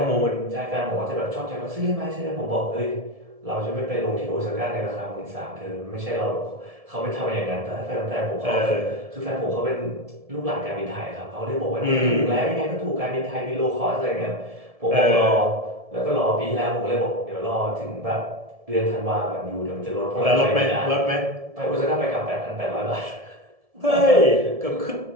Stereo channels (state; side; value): late; left; 1.7 ms